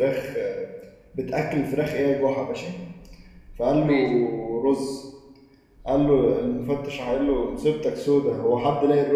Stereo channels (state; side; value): identical; both; correlation 1.00